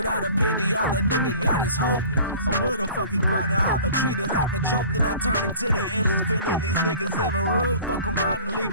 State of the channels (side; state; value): both; inverted; correlation -0.45